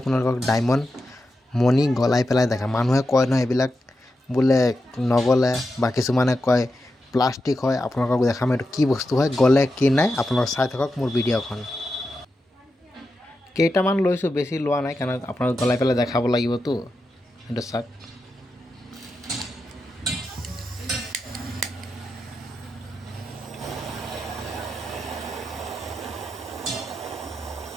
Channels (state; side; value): normal; both; correlation 0.88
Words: ডায়মণ্ড মণি গলাই পেলাই দেখা। মানুহে কয় নহয় এইবিলাক বোলে নগলে, বা কিছুমানে কয় প্লাষ্টিক হয়। আপোনালোকক দেখাম এইটো কি বস্তু হয়, গলে কি নাই। আপোনালোক চাই থাকক মোৰ ভিডিঅ'খন। কেইটামান লৈছোঁ, বেছি লোৱা নাই, কাৰণ আপোনালোক গলাই পেলাই দেখাব লাগিবতো। এইটো চাওক।